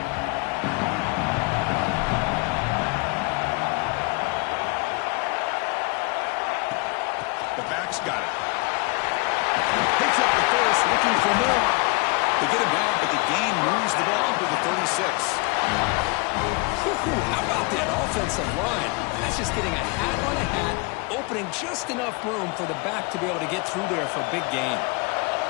Got it. Picks up the first, looking for more. They get him down, but the gain moves the ball up to the 36. How about that offensive line? That's just getting a hat on a hat, opening just enough room for the back to be able to get through there for a big gain.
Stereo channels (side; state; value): right; quieter; 28.5 dB